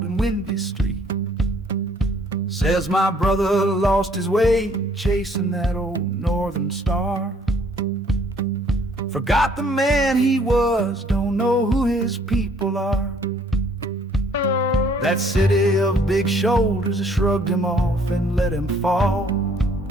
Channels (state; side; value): normal; both; correlation 0.61